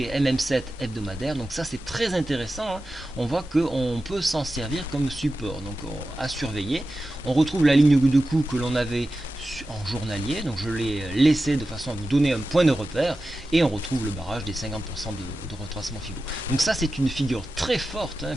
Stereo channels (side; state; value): both; normal; correlation 0.93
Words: MM7 hebdomadaire. Donc ça c'est très intéressant, hein. On voit qu'on peut s'en servir comme support. Donc à surveiller. On retrouve la ligne de coup que l'on avait en journalier. Donc je l'ai laissé de façon à vous donner un point de repère. Et on retrouve le barrage des 50% de retracement Fibo. Donc ça c'est une figure très forte, hein,